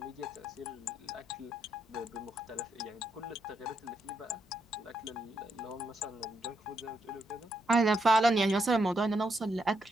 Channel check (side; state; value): both; normal; correlation 0.79